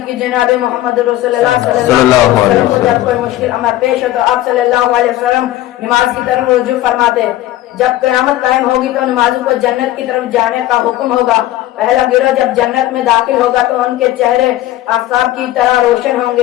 کہ جناب محمد رسول اللہ صلی اللہ علیہ وسلم کو جب کوئی مشکل امر پیش ہو تو آپ صلی اللہ علیہ وسلم نماز کی طرف رجوع فرماتے۔ جب قیامت قائم ہوگی تو نمازوں کو جنت کی طرف جانے کا حکم ہوگا۔ پہلا گروہ جب جنت میں داخل ہوگا تو ان کے چہرے آفتاب کی طرح روشن ہوں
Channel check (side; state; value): right; quieter; 14.9 dB